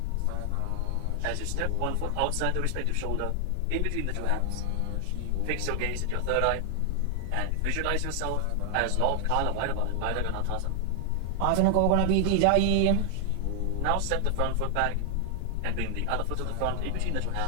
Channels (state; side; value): different; both; correlation 0.00